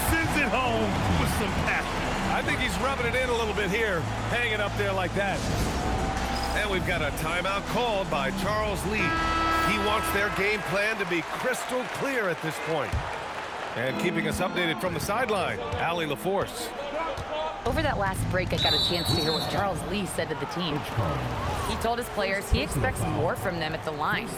sends it home with some passion. I think he's rubbing it in a little bit here, hanging up there like that. And we've got a timeout called by Charles Lee. He wants their game plan to be crystal clear at this point. And keeping us updated from the sideline, Allie LaForce. Over that last break, I got a chance to hear what Charles Lee said to the team. He told his players he expects more from them at the line,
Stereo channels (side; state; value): both; identical; correlation 1.00